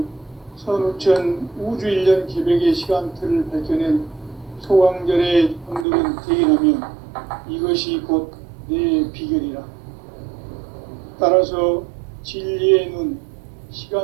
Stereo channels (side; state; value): left; drops out; at 5.9 s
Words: 선우천 우주일년 개백의 시간틀을 밝혀낸 소강절의 분들은 대인하며 이것이 곧 내 비결이라. 따라서 진리의 눈,